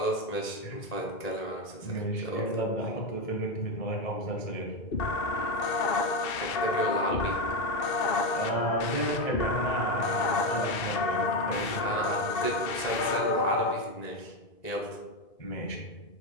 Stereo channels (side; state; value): right; late; 2.6 ms